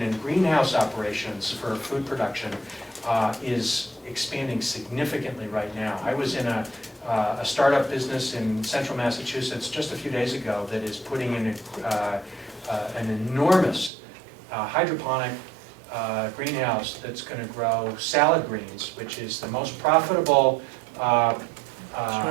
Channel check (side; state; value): left; drops out; at 13.9 s